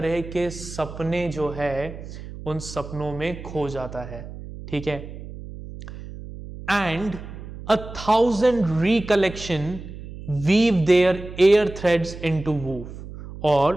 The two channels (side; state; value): right; noise; hum, 12 dB below the sound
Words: के सपने जो है उन सपनों में खो जाता है। ठीक है, and 1,000 recollection weave their air threads into woof।